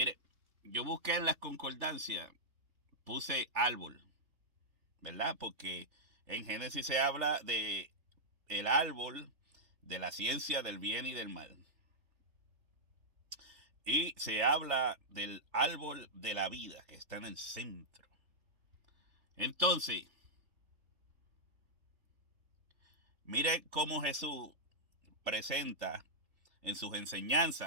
yo busqué en las concordancias, puse árbol, ¿verdad? Porque en Génesis se habla de el árbol de la ciencia del bien y del mal. Y se habla del árbol de la vida que está en el centro. Entonces, mire cómo Jesús presenta en sus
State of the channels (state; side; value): late; left; 3.4 ms